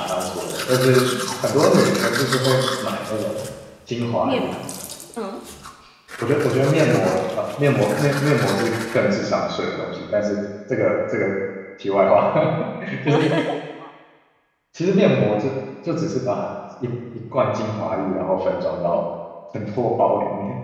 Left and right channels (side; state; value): both; identical; correlation 1.00